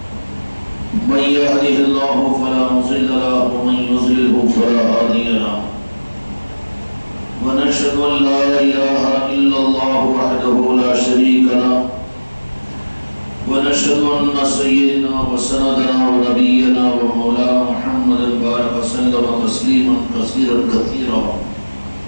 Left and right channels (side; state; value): both; inverted; correlation -1.00